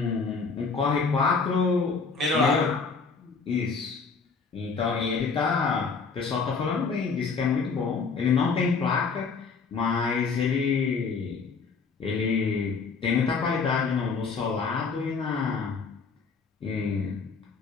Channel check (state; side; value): quieter; right; 5.0 dB